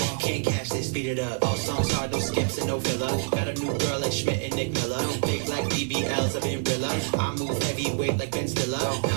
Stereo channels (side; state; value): left; silent; 60 dB below the other